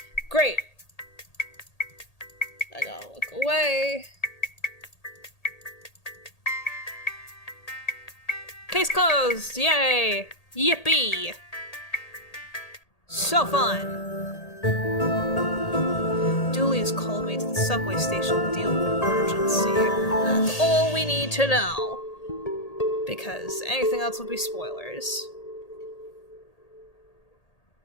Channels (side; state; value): right; late; 1.8 ms